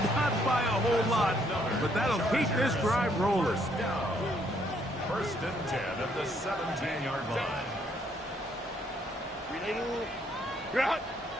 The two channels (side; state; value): both; normal; correlation 0.69